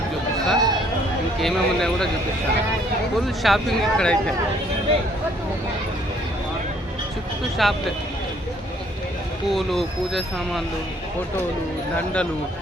చూపిస్తా. ఇంకేమేమి ఉన్నాయో కూడా చూపిస్తాను. ఫుల్ షాపింగ్ ఇక్కడైతే చుట్టూ షాప్లే. పూలు, పూజ సామాన్లు, ఫోటోలు, దండలు,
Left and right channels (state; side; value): normal; both; correlation 0.63